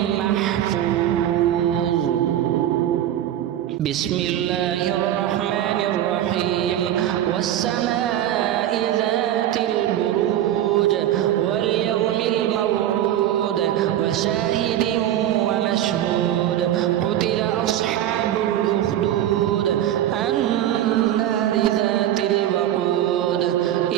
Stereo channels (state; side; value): quieter; left; 11.9 dB